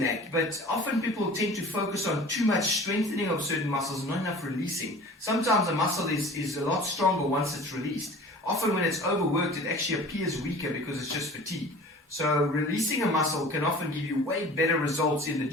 but often people tend to focus on too much strengthening of certain muscles and not enough releasing. Sometimes a muscle is a lot stronger once it's released. Often when it's overworked, it actually appears weaker because it's just fatigue. So releasing a muscle can often give you way better results in the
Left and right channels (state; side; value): normal; both; correlation 0.42